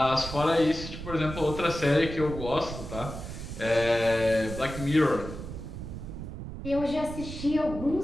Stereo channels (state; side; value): noise; right; rumble, 9 dB below the sound